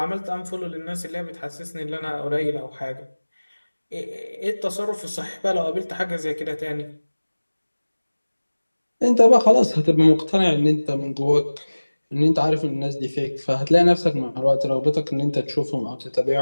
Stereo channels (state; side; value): inverted; both; correlation -1.00